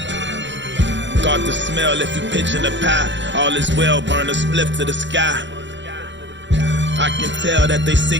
Got the smell if you pitching a pie. All is well, burn a spliff to the sky. I can tell that they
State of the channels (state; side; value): late; left; 0.53 ms